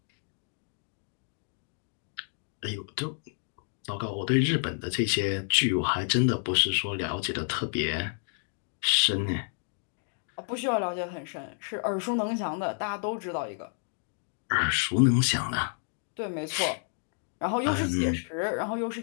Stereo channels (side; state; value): right; silent; 58 dB below the other